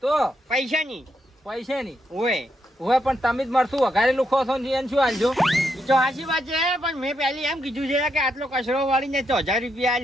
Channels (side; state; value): both; normal; correlation 0.80